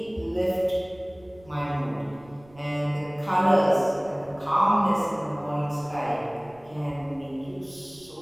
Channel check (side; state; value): right; noise; rumble, 26 dB below the sound